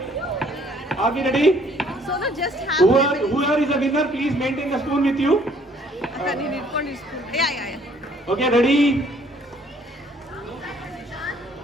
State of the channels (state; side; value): normal; both; correlation 0.61